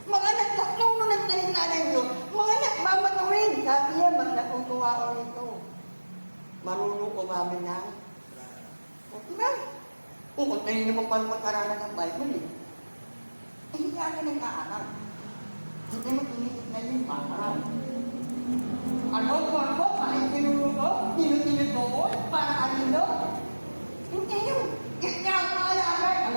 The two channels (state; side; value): inverted; both; correlation -1.00